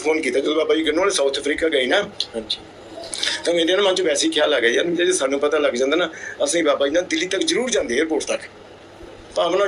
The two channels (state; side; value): identical; both; correlation 1.00